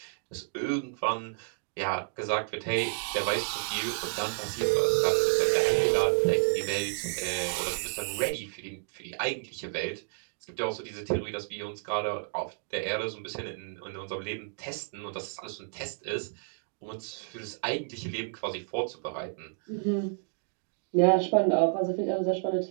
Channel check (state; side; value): silent; left; 57 dB below the other